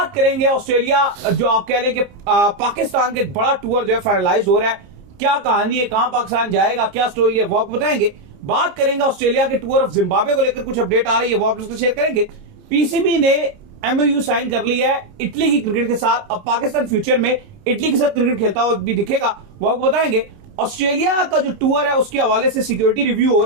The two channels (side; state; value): left; late; 30 ms